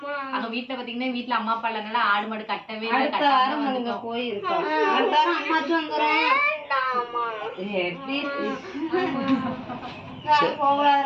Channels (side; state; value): both; identical; correlation 1.00